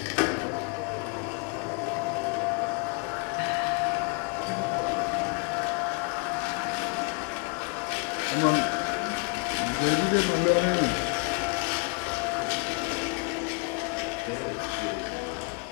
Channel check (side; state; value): right; quieter; 34.6 dB